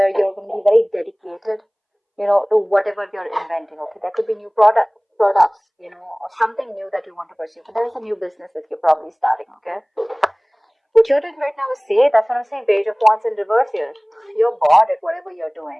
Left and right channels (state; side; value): identical; both; correlation 1.00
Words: you're going to be very dedicated, to whatever you're inventing. Okay, there could be new products, or something new that you want to pursue. But there is a new business that you're probably starting. Okay, what you're doing right now is that's what I'm saying. Page of Wands in reverse here. You're bored at whatever you're